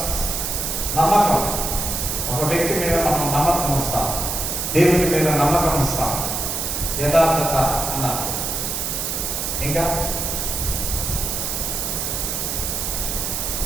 నమ్మకం. ఒక వ్యక్తి మీద మనం నమ్మకం వస్తాం, దేవుడి మీద నమ్మకం వస్తాం. యథార్థత అన్నారు.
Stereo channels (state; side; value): noise; right; hiss, 2 dB below the sound